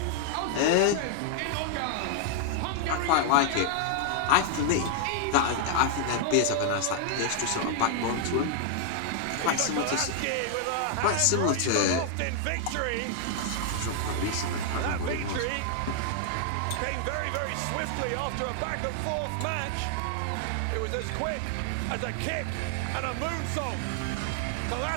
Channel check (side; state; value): both; different; correlation 0.00